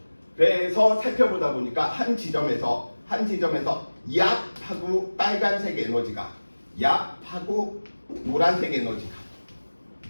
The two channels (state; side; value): inverted; both; correlation -1.00